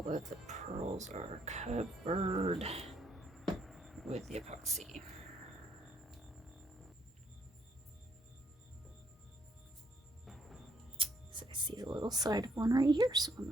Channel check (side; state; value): both; normal; correlation 0.70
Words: of the pearls are covered with the epoxy. So I see the little side of one right here, so I'm